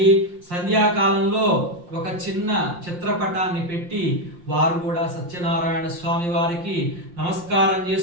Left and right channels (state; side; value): late; left; 5.7 ms